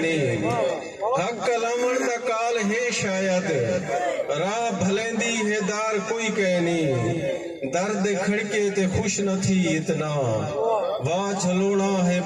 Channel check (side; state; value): both; identical; correlation 1.00